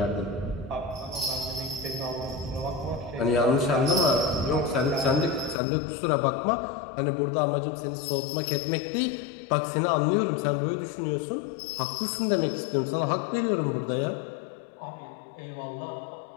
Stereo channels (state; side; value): drops out; right; at 5.6 s